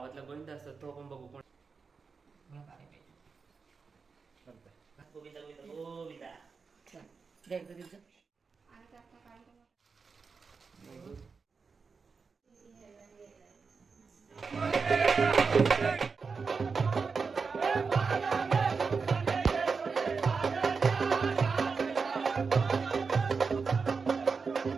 गोविंद असतो तो आपण बघू. कोण गोविंदा गोविंदा गोविंदा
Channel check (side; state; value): left; quieter; 5.0 dB